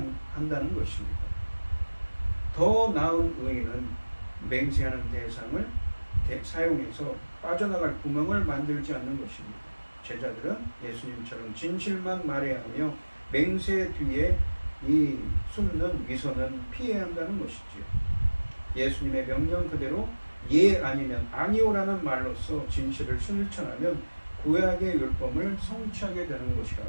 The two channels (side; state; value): both; inverted; correlation -1.00